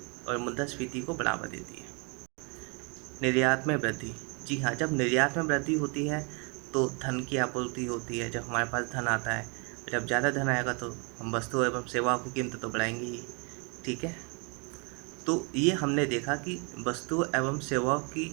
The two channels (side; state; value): left; quieter; 33.7 dB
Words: और मुद्रास्फीति को बढ़ावा देती है। निर्यात में वृद्धि, जी हाँ, जब निर्यात में वृद्धि होती है तो धन की आपूर्ति होती है। जब हमारे पास धन आता है, जब ज़्यादा धन आएगा तो हम वस्तु एवं सेवाओं की कीमत तो बढ़ाएंगे ही। ठीक है, तो ये हमने देखा कि वस्तु एवं सेवाओं की